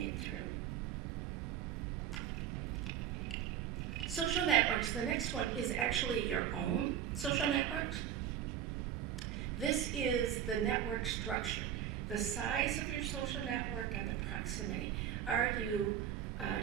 through. Social networks, the next one is actually your own social networks. This is the network structure, the size of your social network and the proximity.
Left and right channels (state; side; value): quieter; left; 9.8 dB